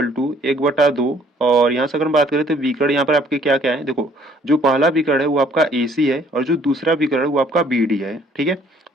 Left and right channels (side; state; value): both; normal; correlation 0.60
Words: टू 1/2, और यहाँ से अगर हम बात करें तो विकर्ण यहाँ पर आपके क्या क्या है, देखो जो पहला विकर्ण है वो आपका AC है और जो दूसरा विकर्ण है वो आपका BD है। ठीक है,